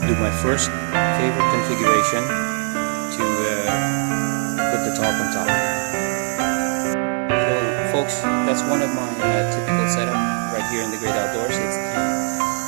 do my first favorite configuration to put the tarp on top. So folks, that's one of my typical setup right here in the Great Outdoors. It's the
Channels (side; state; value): left; silent; 57 dB below the other